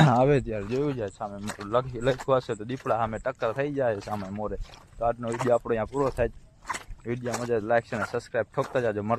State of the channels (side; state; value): both; identical; correlation 1.00